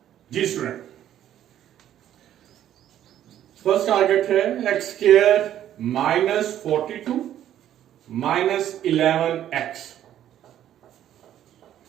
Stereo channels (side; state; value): left; quieter; 11.4 dB